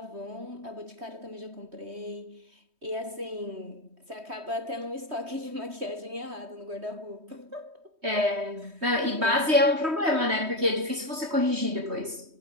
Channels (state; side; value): late; left; 3.2 ms